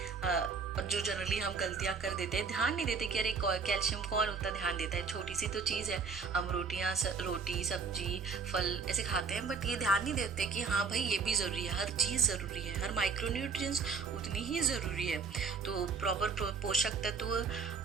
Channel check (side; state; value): left; quieter; 5.2 dB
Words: और जो जनरली हम गलतियां कर देते हैं, ध्यान नहीं देते कि अरे कैल्शियम कौन उतना ध्यान देता है, छोटी सी तो चीज़ है। हम रोटी सब्जी फल ऐसे खाते हैं, बट ये ध्यान नहीं देते कि हाँ भाई ये भी ज़रूरी है, हर चीज़ ज़रूरी है, हर माइक्रोन्यूट्रिएंट्स उतनी ही ज़रूरी है। तो प्रॉपर पोषक तत्व